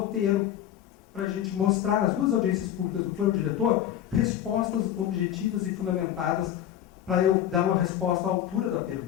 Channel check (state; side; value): quieter; right; 11.1 dB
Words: para a gente mostrar nas 2 audiências públicas do plano diretor respostas objetivas e fundamentadas para eu dar uma resposta à altura da